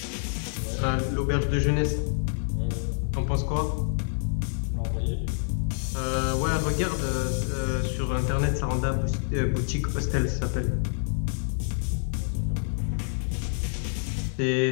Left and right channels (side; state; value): right; silent; 60 dB below the other